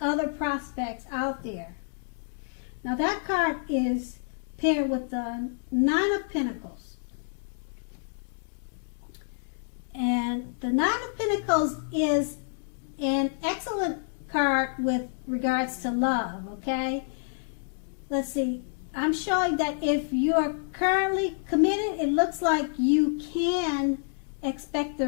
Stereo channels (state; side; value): silent; right; digital silence